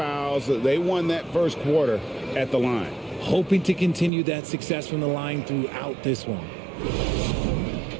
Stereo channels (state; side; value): drops out; left; at 4.1 s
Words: They won that first quarter at the line. Hoping to continue that success from the line throughout this one.